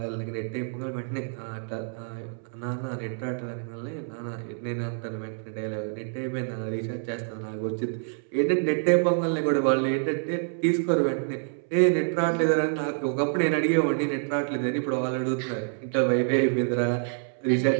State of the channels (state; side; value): silent; left; 60 dB below the other